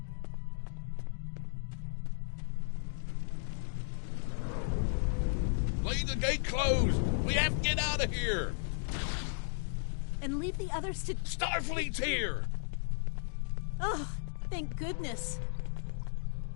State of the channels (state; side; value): silent; right; digital silence